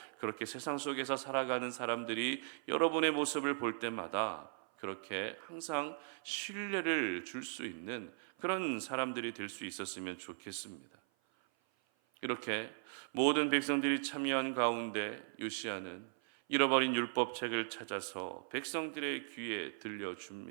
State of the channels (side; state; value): left; silent; 52 dB below the other